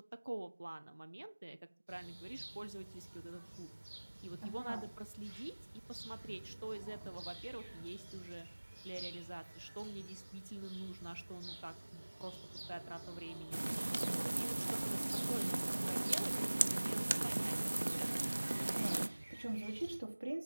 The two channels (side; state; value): both; inverted; correlation -1.00